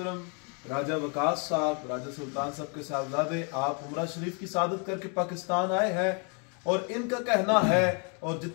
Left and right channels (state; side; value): quieter; right; 37.1 dB